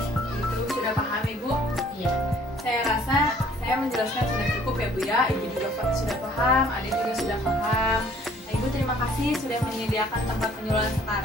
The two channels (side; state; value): both; normal; correlation 0.57